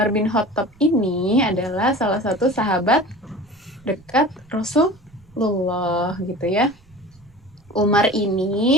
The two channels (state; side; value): noise; right; rumble, 29 dB below the sound